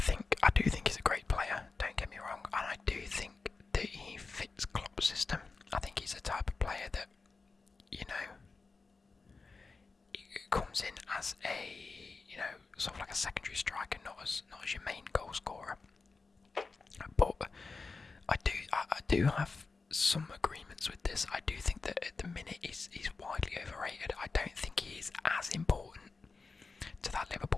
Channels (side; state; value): right; quieter; 4.2 dB